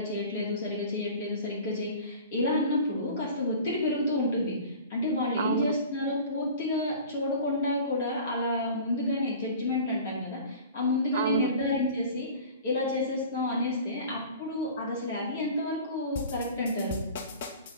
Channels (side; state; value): both; inverted; correlation -0.41